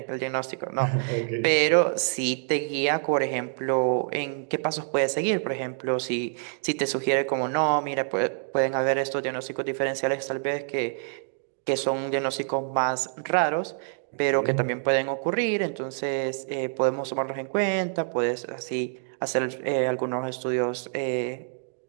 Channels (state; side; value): silent; left; digital silence